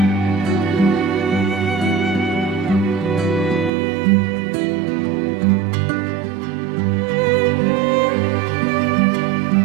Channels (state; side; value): drops out; left; at 3.7 s